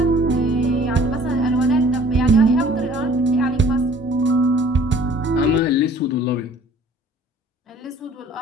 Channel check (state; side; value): normal; both; correlation 0.53